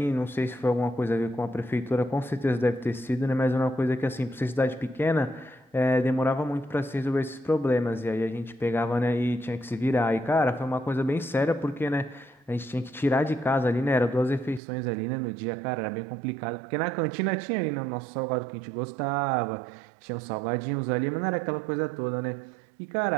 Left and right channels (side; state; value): left; drops out; at 14.6 s